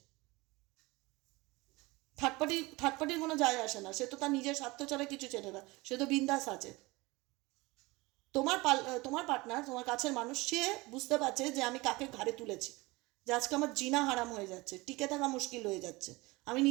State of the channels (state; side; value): quieter; left; 22.7 dB